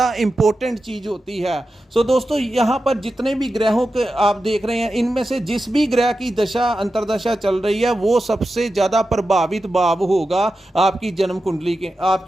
इंपॉर्टेंट चीज़ होती है। सो दोस्तों यहाँ पर जितने भी ग्रहों के आप देख रहे हैं, इनमें से जिस भी ग्रह की दशा अंतरदशा चल रही है, वो सबसे ज़्यादा प्रभावित भाव होगा आपकी जन्म कुंडली के,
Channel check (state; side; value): normal; both; correlation 0.91